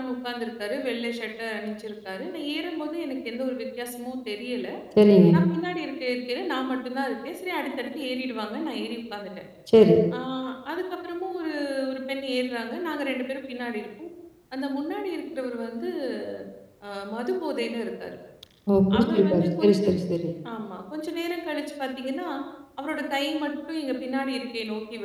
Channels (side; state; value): both; identical; correlation 1.00